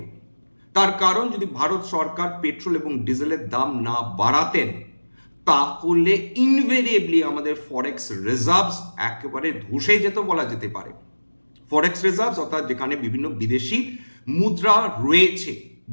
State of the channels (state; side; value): inverted; both; correlation -1.00